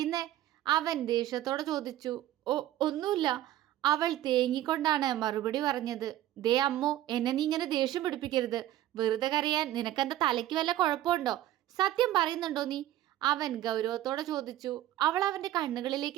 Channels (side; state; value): left; quieter; 13.6 dB